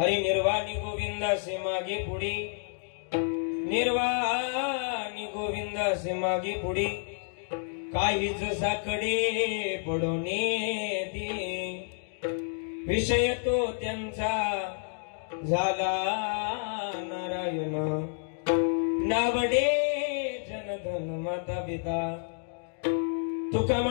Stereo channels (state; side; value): silent; right; digital silence